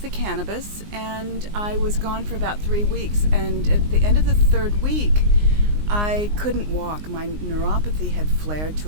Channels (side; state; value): left; late; 19 ms